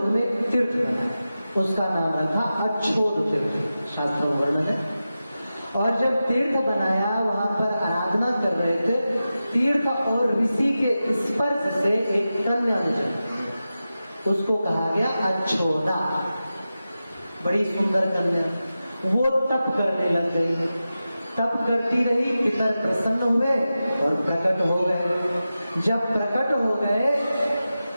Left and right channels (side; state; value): both; inverted; correlation -0.93